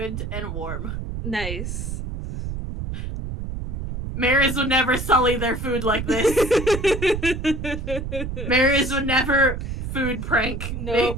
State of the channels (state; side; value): noise; right; rumble, 5 dB below the sound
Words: and warm. Nice. Mariz would never sully their food like this. Mariz would never food prank. Nope.